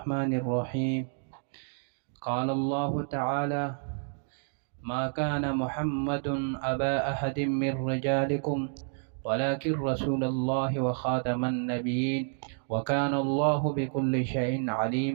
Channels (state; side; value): silent; left; 57 dB below the other